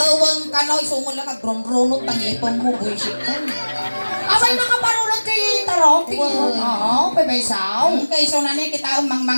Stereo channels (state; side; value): inverted; both; correlation -1.00